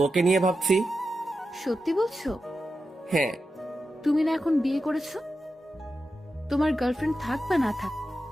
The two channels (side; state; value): both; normal; correlation 0.91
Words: ওকে নিয়ে ভাবছি। সত্যি বলছো? হ্যাঁ। তুমি না এখন বিয়ে করেছো? তোমার গার্লফ্রেন্ড থাক বা না থাক,